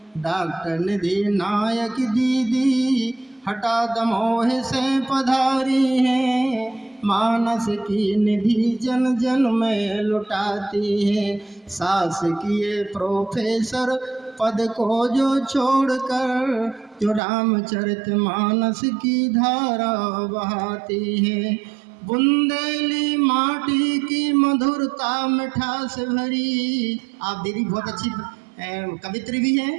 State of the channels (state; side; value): drops out; left; at 17.2 s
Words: डॉक्टर निधि नायक दीदी हठा दमोह से पधारी हैं, मानस की निधि जन जन में लुटाती हैं। शासकीय प्रोफेसर पद को जो छोड़कर जो रामचरितमानस की धारा बहाती है। बुंदेली माटी की मधुरता मिठास भरी। आप दीदी बहुत अच्छी कवित्री भी